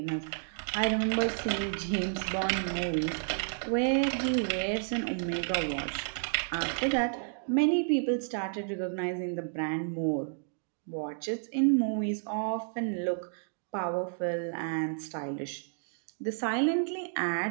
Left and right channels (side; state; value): left; silent; digital silence